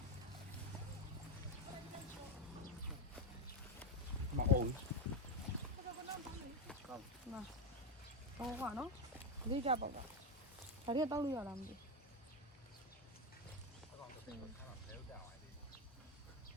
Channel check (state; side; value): normal; both; correlation 0.09